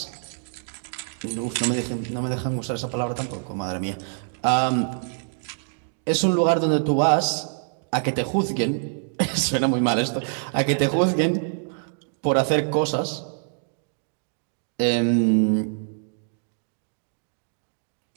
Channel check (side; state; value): left; silent; digital silence